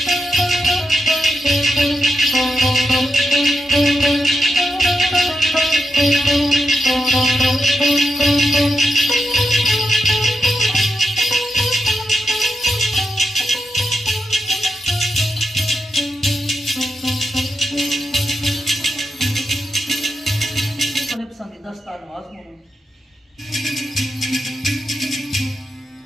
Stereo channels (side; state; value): both; normal; correlation 0.85